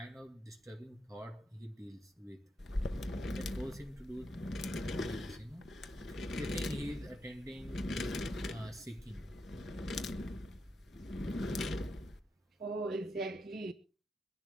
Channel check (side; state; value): both; normal; correlation 0.84